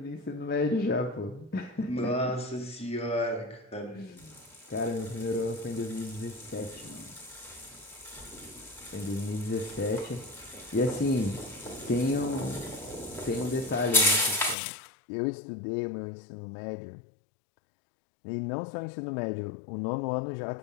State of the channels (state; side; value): drops out; right; at 14.6 s